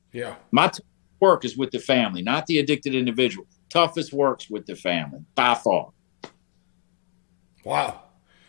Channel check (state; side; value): silent; right; digital silence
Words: Yeah. My work is with the family, not the addicted individual. Toughest works with the family, by far. Wow.